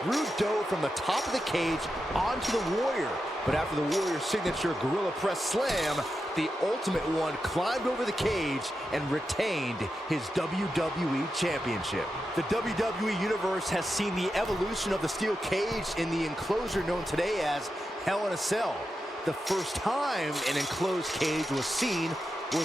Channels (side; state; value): both; normal; correlation 0.89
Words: Rude dove from the top of the cage onto the Warrior. But after the Warrior's signature Gorilla Press Slam, the Ultimate One climbed over the cage and retained his WWE Championship. The WWE Universe has seen the evolution of the steel cage in the enclosure known today as Hell in a Cell. The first time an enclosed cage was seen